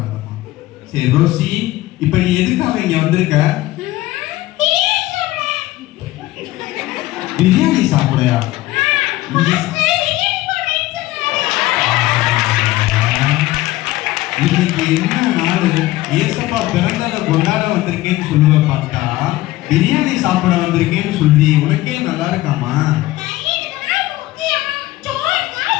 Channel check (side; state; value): right; quieter; 17.2 dB